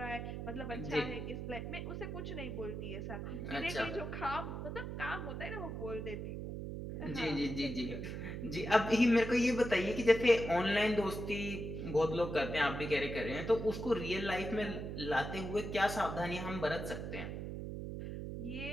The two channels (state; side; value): noise; right; hum, 5 dB below the sound